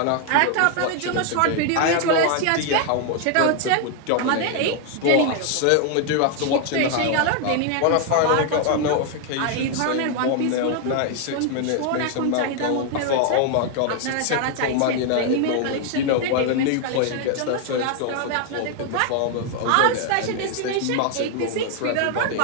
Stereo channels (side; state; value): both; different; correlation 0.00